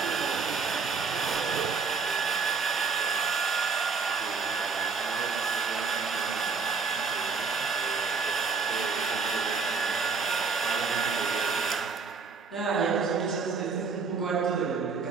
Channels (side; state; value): left; quieter; 5.0 dB